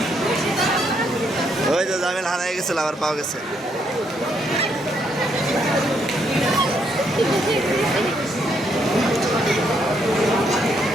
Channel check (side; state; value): both; normal; correlation 0.74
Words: ওই যে জামিল হারাই গেছিল, আবার পাওয়া গেছে।